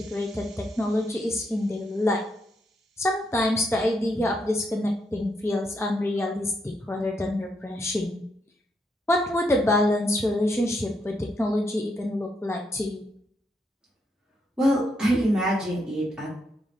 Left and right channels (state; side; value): normal; both; correlation 0.79